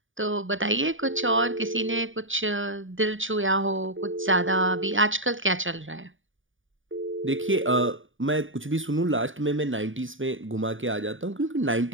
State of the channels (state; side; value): late; left; 0.57 ms